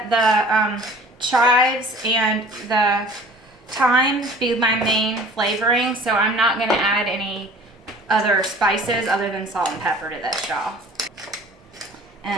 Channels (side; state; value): both; normal; correlation 0.48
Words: the chives and the thyme be my main flavoring, so I'm not gonna add any other spices other than salt and pepper to this, y'all.